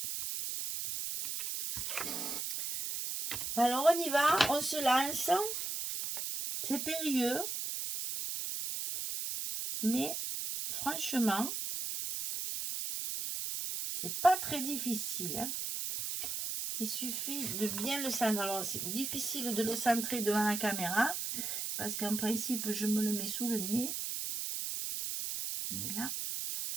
Alors, on y va, on se lance. C'est périlleux. Mais franchement, c'est pas très difficile. Hein. Il suffit de bien le centrer. Alors, c'est difficile de le centrer devant la caméra, parce qu'en principe, je me le mets sous le nez. Mais là,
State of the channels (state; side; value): noise; right; hiss, 3 dB below the sound